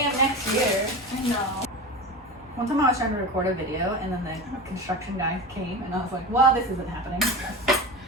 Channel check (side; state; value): both; normal; correlation 0.28